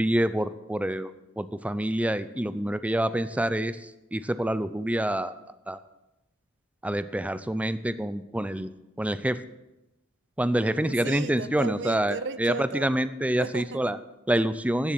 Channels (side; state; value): both; normal; correlation 0.86